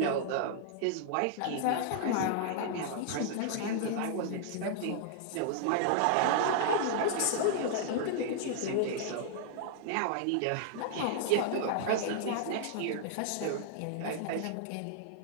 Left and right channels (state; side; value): different; both; correlation -0.01